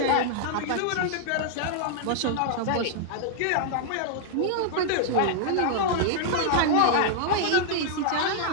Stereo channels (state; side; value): different; both; correlation -0.01